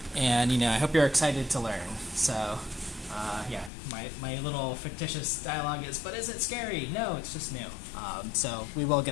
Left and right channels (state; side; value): drops out; right; at 3.7 s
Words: And I hope you're excited to learn. So yeah, my little fictitious dialogue is, but is it scary? No, it's just new. So we will